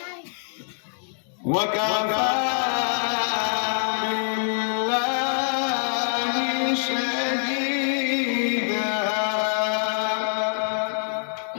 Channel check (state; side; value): silent; right; digital silence